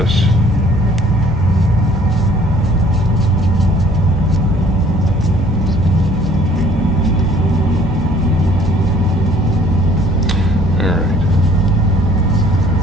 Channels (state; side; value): normal; both; correlation 0.56